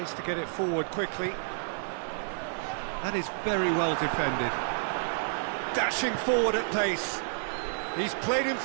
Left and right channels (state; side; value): silent; left; digital silence